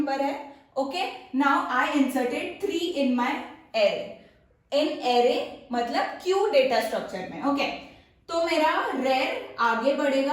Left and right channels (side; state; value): both; identical; correlation 1.00